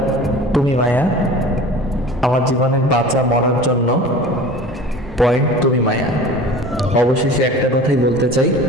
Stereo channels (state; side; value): normal; both; correlation 0.40